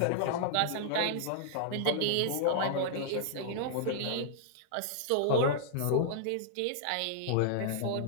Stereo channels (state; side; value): different; both; correlation -0.01